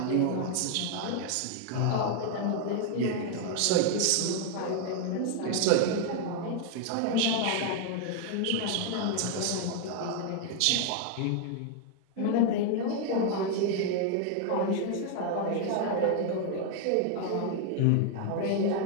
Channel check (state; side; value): different; both; correlation 0.00